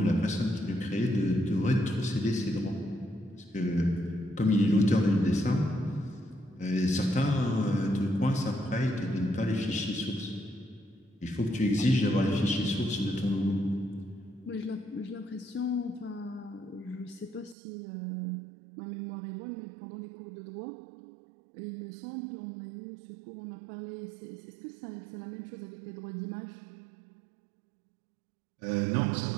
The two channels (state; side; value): drops out; left; at 17.6 s